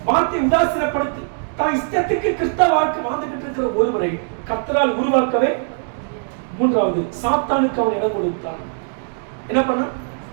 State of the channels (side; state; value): left; silent; digital silence